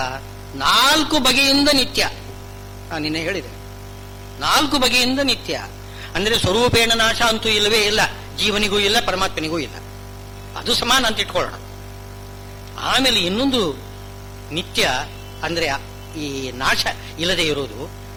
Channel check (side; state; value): both; identical; correlation 1.00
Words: 4 ಬಗೆಯಿಂದ ನಿತ್ಯ. ನಾನು ನಿನ್ನೆ ಹೇಳಿದೆ, 4 ಬಗೆಯಿಂದ ನಿತ್ಯ ಅಂದ್ರೆ ಸ್ವರೂಪೇಣ ನಾಶ ಅಂತೂ ಇಲ್ಲವೇ ಇಲ್ಲ, ಜೀವನಿಗೂ ಇಲ್ಲ, ಪರಮಾತ್ಮನಿಗೂ ಇಲ್ಲ, ಅದು ಸಮಾನ ಅಂತ ಇಟ್ಕೊಳ್ಳೋಣ. ಆಮೇಲೆ ಇನ್ನೊಂದು ನಿತ್ಯ ಅಂದ್ರೆ ಈ ನಾಶ ಇಲ್ಲದೆ ಇರೋದು